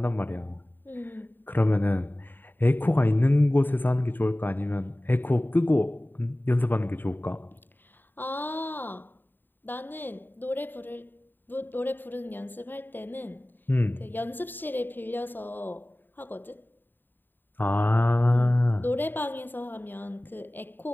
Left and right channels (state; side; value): late; right; 0.093 ms